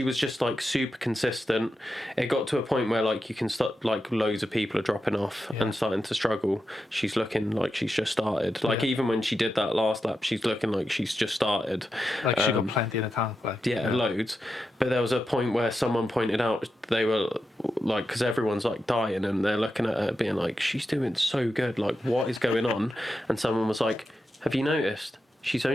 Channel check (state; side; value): normal; both; correlation 0.89